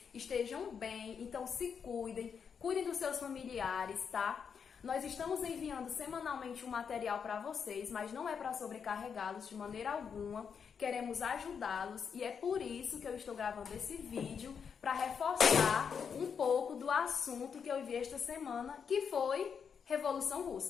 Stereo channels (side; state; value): right; quieter; 6.7 dB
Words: estejam bem, então se cuidem dos seus familiares, tá? Nós estamos enviando semanalmente um material para vocês, mas não é para sobrecarregá-los de maneira alguma. Queremos ajudá-los e é por isso que eu estou gravando esse vídeo para reforçar um pouco do assunto que eu vi esta semana, que foi Revolução